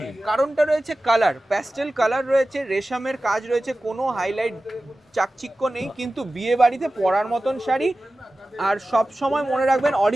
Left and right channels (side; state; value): both; normal; correlation 0.95